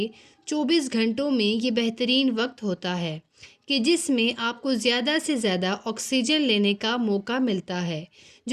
24 گھنٹوں میں یہ بہترین وقت ہوتا ہے کہ جس میں آپ کو زیادہ سے زیادہ آکسیجن لینے کا موقع ملتا ہے،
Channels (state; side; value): identical; both; correlation 1.00